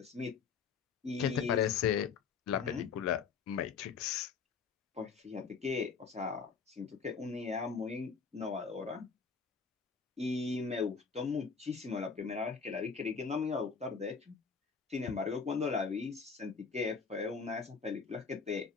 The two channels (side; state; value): right; quieter; 5.7 dB